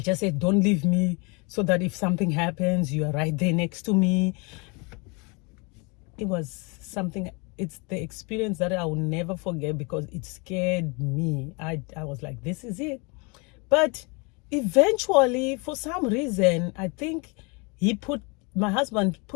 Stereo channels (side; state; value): right; quieter; 30.5 dB